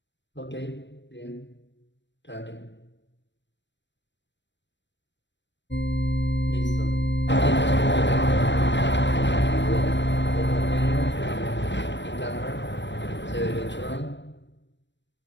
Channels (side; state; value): right; late; 0.53 ms